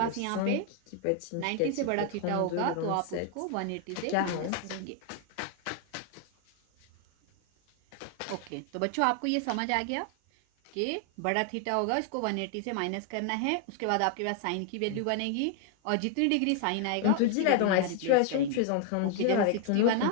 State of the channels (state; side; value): different; both; correlation 0.00